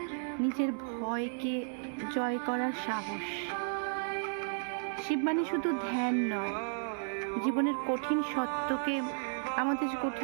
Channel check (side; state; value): left; silent; 55 dB below the other